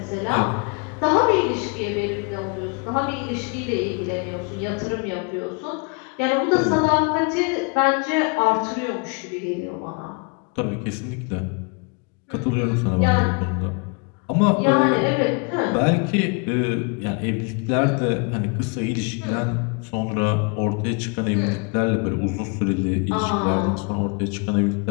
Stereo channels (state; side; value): quieter; right; 33.1 dB